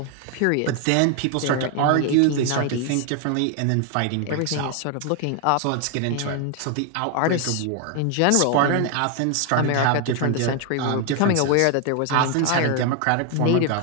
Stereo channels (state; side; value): different; both; correlation 0.00